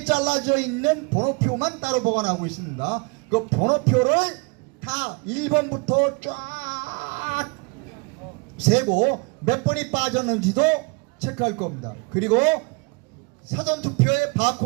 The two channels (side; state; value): left; quieter; 31.0 dB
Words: 잘라져 있는 번호표만 따로 보관하고 있습니다. 그 번호표를 다 1번부터 쫙 세고 몇 번이 빠졌는지도 체크할 겁니다. 그리고 사전투표의